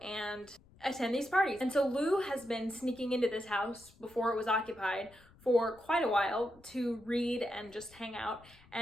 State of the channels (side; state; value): left; noise; rumble, 26 dB below the sound